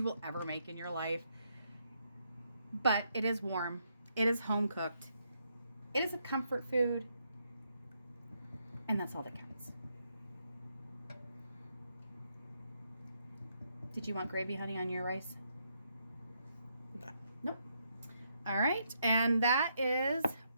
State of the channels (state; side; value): inverted; both; correlation -0.77